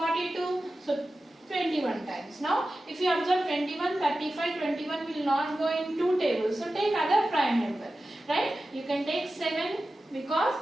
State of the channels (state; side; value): normal; both; correlation 0.94